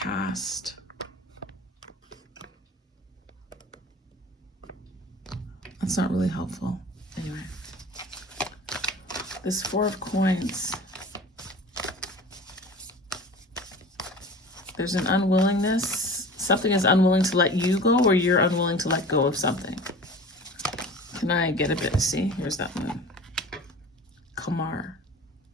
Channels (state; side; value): normal; both; correlation 0.39